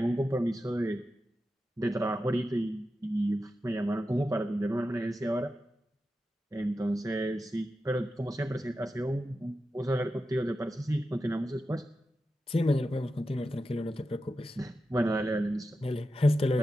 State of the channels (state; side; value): normal; both; correlation 0.90